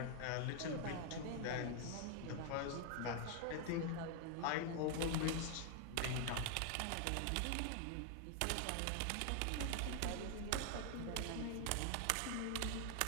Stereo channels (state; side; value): different; both; correlation 0.00